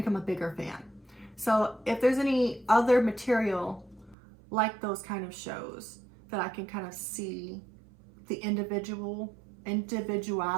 a bigger fan. So if there's any other material like those kind of shows that I can kind of see the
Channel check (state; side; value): drops out; left; at 4.2 s